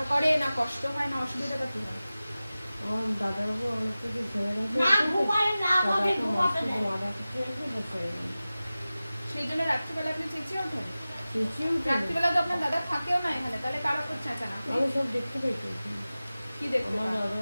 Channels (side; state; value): both; inverted; correlation -0.96